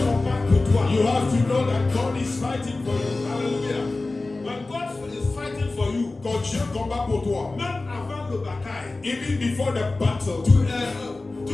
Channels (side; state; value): right; quieter; 3.3 dB